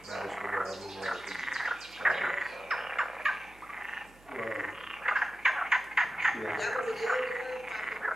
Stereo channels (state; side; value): noise; right; hum, 25 dB below the sound